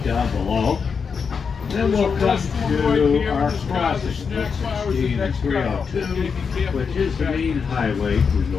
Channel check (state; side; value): quieter; right; 5.8 dB